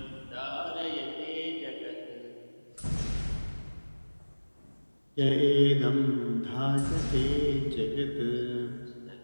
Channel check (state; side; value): inverted; both; correlation -1.00